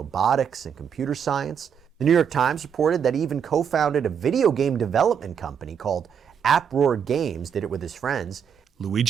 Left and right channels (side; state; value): left; quieter; 7.6 dB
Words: and computer science. The New York Times reported that he even co-founded a video game development company called Uproar Games, did it with his friends.